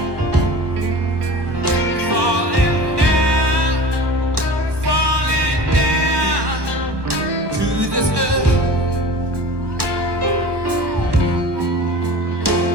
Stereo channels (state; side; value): late; left; 1.2 ms